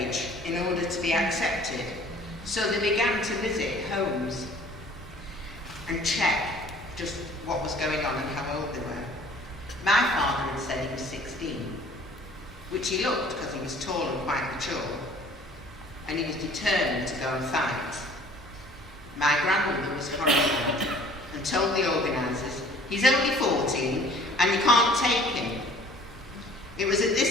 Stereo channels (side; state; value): both; normal; correlation 0.52